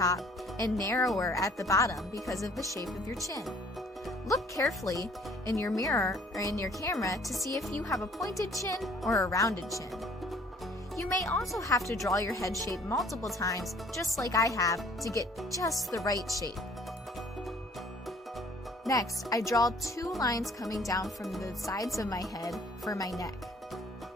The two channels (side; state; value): both; normal; correlation 0.57